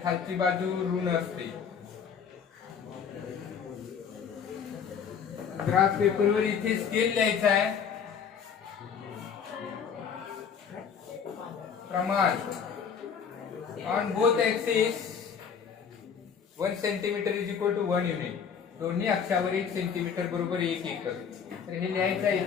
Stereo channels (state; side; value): quieter; right; 7.0 dB